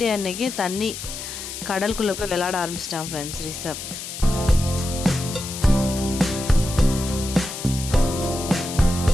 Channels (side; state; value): left; noise; hiss, 9 dB below the sound